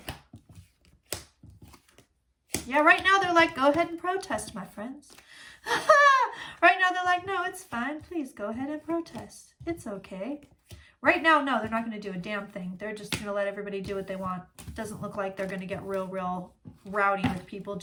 Yeah, right now they're like, go ahead and protest, my friends. Right now they're like, no, it's fine. Please go ahead and protest. It's okay. Right now, no, they're not going to do a damn thing. They're just going to let everybody do what they want. It doesn't look like they're going to get real rowdy with people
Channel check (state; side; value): identical; both; correlation 1.00